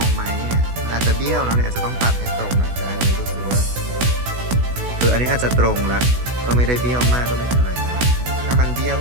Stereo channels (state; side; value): late; left; 16 ms